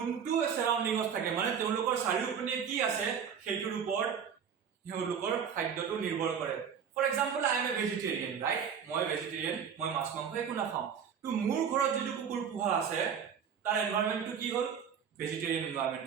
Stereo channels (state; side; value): quieter; left; 7.4 dB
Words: সাৰাউন্ডিংত থাকে মানে তেওঁলোকৰ চাৰিওপিনে কি আছে সেইটোৰ ওপৰত তেওঁলোকৰ খাদ্যটো নিৰ্ভৰ কৰে. For example, I am a vegetarian, right? মই vegetarian, মই মাছ মাংস একো নাখাওঁ. তো মোৰ ঘৰত যদি কুকুৰ পোহা আছে তাৰ এনভায়ৰনমেন্টটো কি হ'ল vegetarian environment,